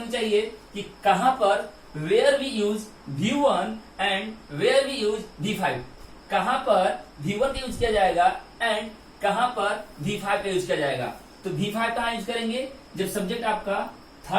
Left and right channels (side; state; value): both; identical; correlation 1.00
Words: चाहिए कि कहां पर where we use V1 and where we use V5, कहां पर V1 का यूज किया जाएगा एंड कहां पर V5 का यूज किया जाएगा। तो V5 कहां यूज करेंगे, जब सब्जेक्ट आपका